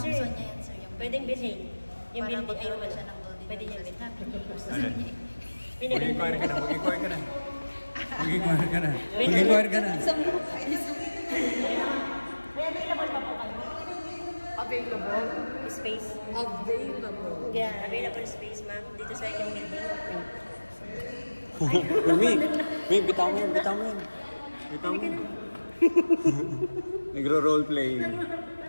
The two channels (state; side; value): inverted; both; correlation -1.00